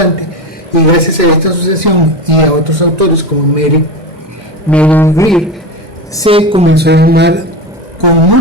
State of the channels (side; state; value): both; normal; correlation 0.23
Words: y gracias a esta asociación y a otros autores como Mary Greer, se comenzó a llamar con